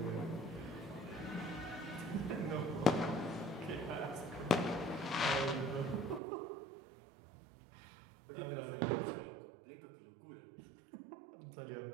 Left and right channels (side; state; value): left; drops out; at 6.2 s